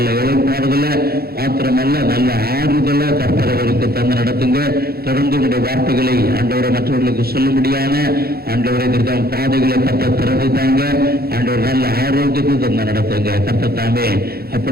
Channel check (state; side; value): late; left; 0.45 ms